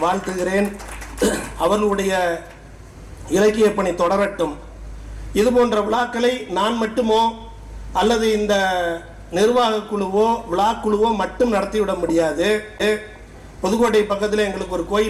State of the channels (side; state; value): both; identical; correlation 1.00